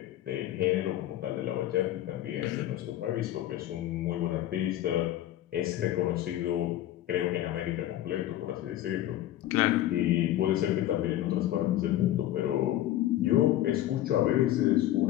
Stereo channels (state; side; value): quieter; right; 13.4 dB